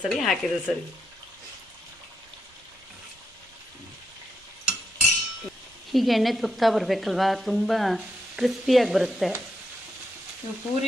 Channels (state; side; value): normal; both; correlation 0.82